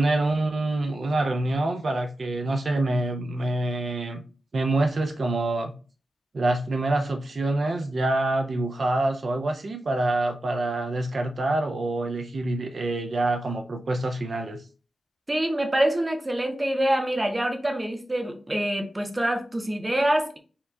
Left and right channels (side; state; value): both; normal; correlation 0.92